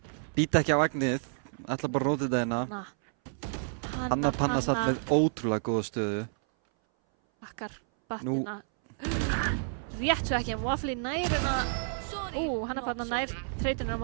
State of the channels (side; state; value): left; silent; 58 dB below the other